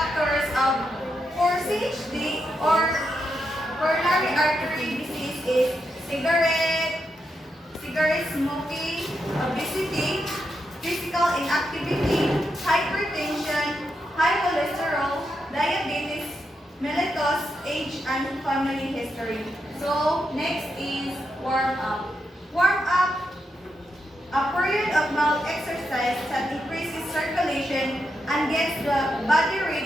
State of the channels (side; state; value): both; normal; correlation 0.84